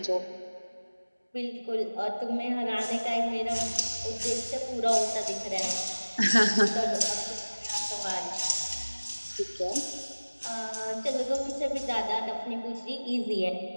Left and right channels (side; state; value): both; inverted; correlation -1.00